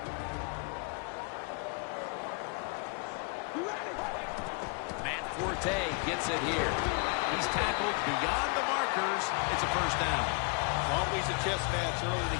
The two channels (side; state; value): right; quieter; 34.1 dB